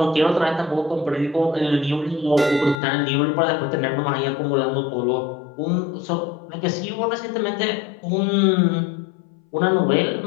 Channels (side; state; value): right; drops out; at 2.8 s